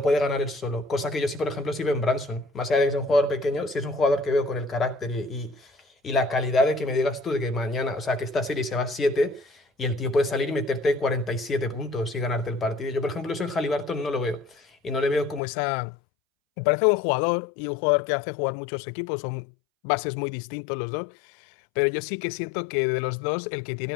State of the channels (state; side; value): drops out; right; at 15.4 s